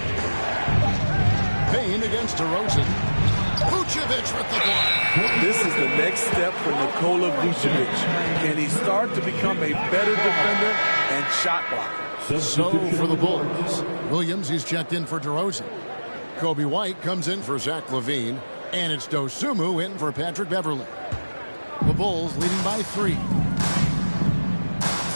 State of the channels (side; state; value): both; inverted; correlation -1.00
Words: Payne against DeRozan. Vucevic with the block. This is the next step for Nikola Vucevic. Can he start to become a better defender and shot blocker? So for the Bulls, Williams, he's checked in for DeRozan. Kobe White comes in for Zach LaVine. And it's Dosunmu in for Patrick Beverley. The Bulls leading by 3.